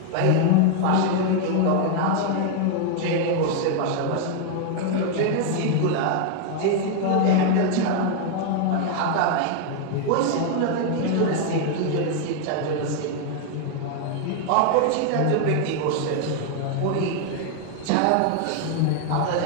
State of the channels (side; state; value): both; different; correlation 0.00